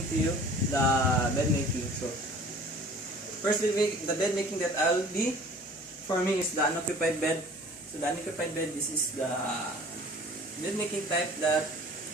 to you the bed making. So firstly, the bed making that I'll be performing is the unoccupied bed. So the unoccupied bed, this is the bed making type that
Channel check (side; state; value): both; normal; correlation 0.47